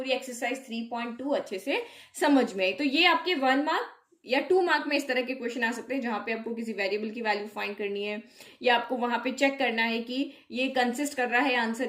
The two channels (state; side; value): identical; both; correlation 1.00